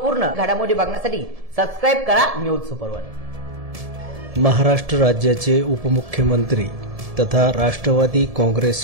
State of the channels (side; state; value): left; late; 1.7 ms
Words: घडामोडी बघण्यासाठी सबस्क्राइब करा न्यूज सुपर वन। महाराष्ट्र राज्याचे उपमुख्यमंत्री तथा राष्ट्रवादी